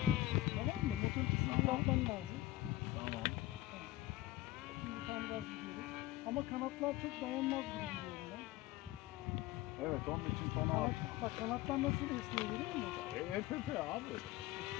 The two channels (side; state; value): right; quieter; 16.5 dB